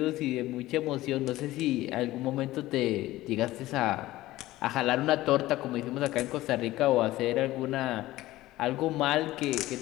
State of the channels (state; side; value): quieter; right; 16.7 dB